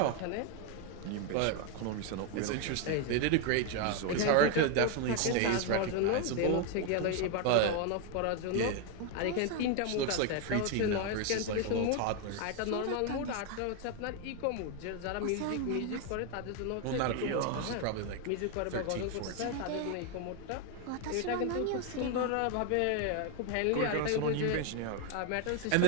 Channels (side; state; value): both; different; correlation 0.01